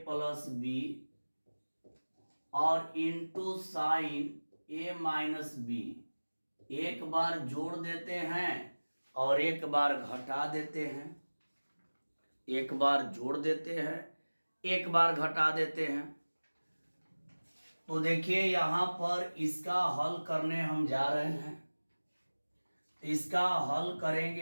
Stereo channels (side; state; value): both; inverted; correlation -1.00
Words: प्लस बी और इंटू साइन ए माइनस बी। एक बार जोड़ देते हैं और एक बार घटा देते हैं, एक बार जोड़ देते हैं एक बार घटा देते हैं। तो देखिए यहां पर इसका हल करने हम जा रहे हैं। इसका हल